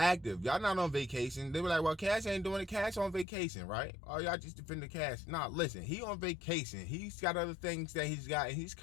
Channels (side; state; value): right; drops out; at 3.2 s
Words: Y'all not on vacation. They were like, well, Cass ain't doing it. Cass on vacation, right? Oh, y'all just defending Cass. Nah, listen, he on vacation. He's got other things that he's got, and he's